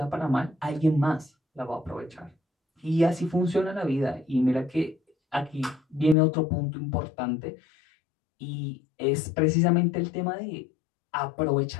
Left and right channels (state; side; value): drops out; right; at 6.2 s